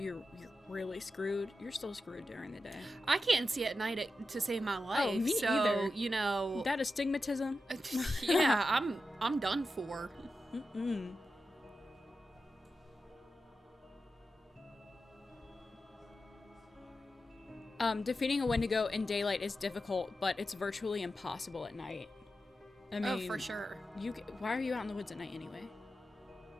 really screwed, you're still screwed during the day. I can't see at night to save my life. Oh, me so, either. That astigmatism? Yeah, I'm done for. Mm-mm. Defeating a Wendigo in daylight is difficult, but it's virtually impossible at night. I mean, Oh, for sure. Why are you out in the woods at night anyway?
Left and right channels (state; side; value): normal; both; correlation 0.90